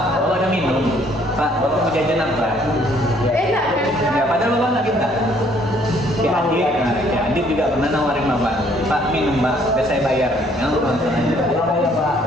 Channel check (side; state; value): both; normal; correlation 0.63